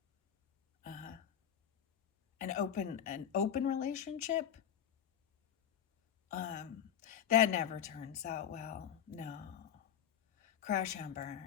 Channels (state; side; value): quieter; right; 9.6 dB